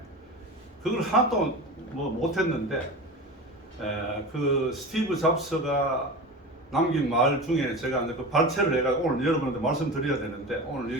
그걸 하나도 뭐 못했는데, 그 스티브 잡스가 남긴 말 중에 제가 이제 그 발췌를 해가 오늘 여러분한테 말씀드려야 되는데 오늘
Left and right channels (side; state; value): both; normal; correlation 0.30